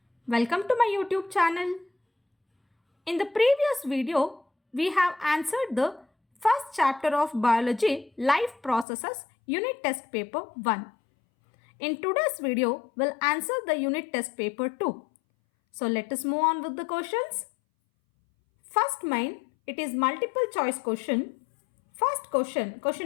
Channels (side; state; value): right; drops out; at 8.8 s